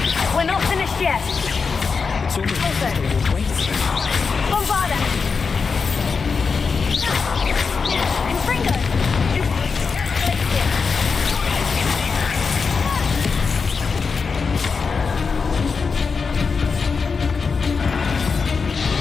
We're not finished yet. It's almost Bombarda! Confringo!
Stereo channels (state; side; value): quieter; right; 5.1 dB